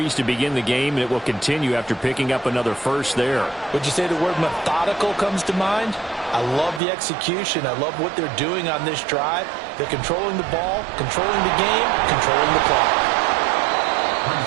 to begin the game, and it will continue after picking up another first there. Would you say the word methodical comes to mind? I love the execution. I love what they're doing on this drive. They're controlling the ball, controlling the game, controlling the clock.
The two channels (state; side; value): drops out; left; at 6.8 s